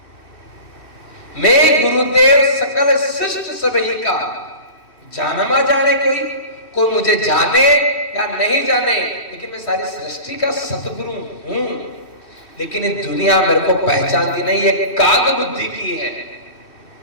मैं गुरुदेव सकल सृष्ट सबही का, जानमा जाने कोई मुझे जाने या नहीं जाने, लेकिन मैं सारी सृष्टि का सतगुरु हूं। लेकिन ये दुनिया मेरे को पहचानती नहीं, ये काग बुद्धि की है।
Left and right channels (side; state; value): right; late; 2.6 ms